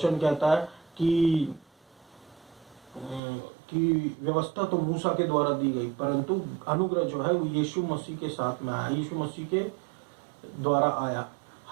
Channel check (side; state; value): left; drops out; at 3.2 s